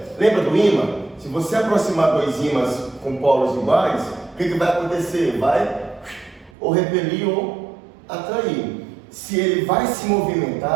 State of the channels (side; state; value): left; drops out; at 6.5 s